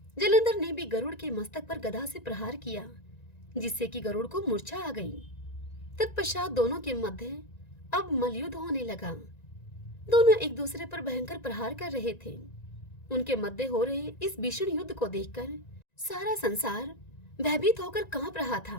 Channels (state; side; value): late; right; 1.9 ms